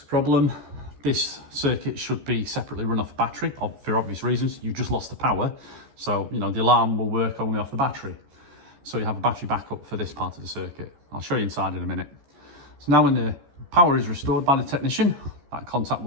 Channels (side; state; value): left; late; 14 ms